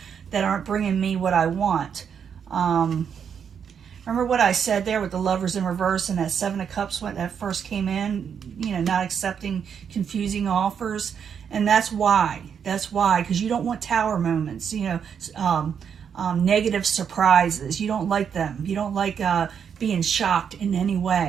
that aren't bringing me what I want. Remember what I said there with the Lovers in reverse and that Seven of Cups when that first came in, not accepting confusing offers? And that's why. That's why, because you don't want tower moments, negative surprises. You don't like them. You don't like being shocked in any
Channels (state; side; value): quieter; left; 7.5 dB